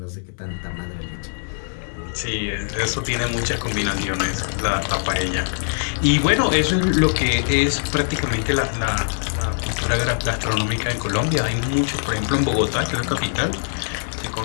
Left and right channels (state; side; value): silent; right; digital silence